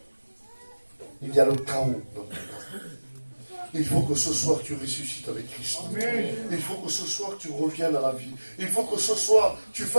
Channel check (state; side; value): inverted; both; correlation -1.00